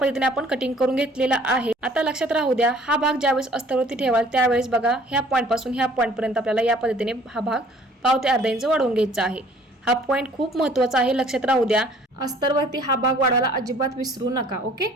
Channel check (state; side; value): normal; both; correlation 0.55